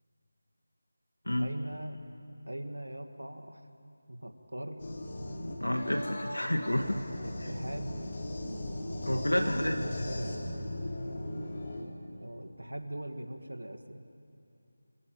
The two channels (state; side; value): inverted; both; correlation -0.98